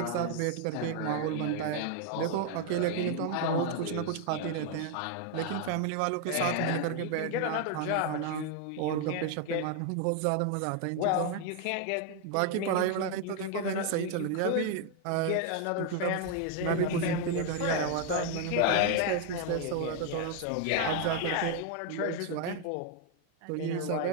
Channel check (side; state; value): both; different; correlation 0.00